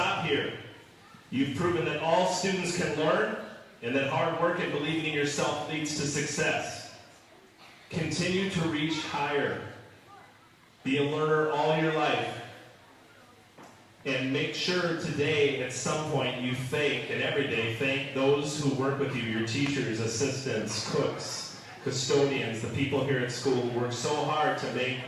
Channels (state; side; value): identical; both; correlation 1.00